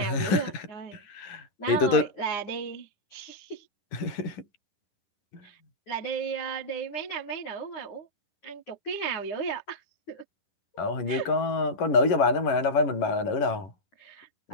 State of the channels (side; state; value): right; late; 11 ms